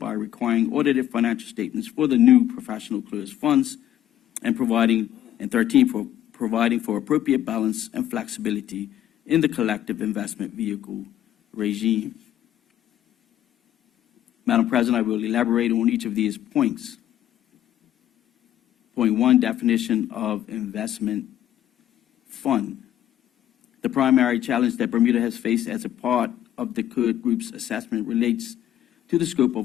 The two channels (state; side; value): quieter; right; 12.0 dB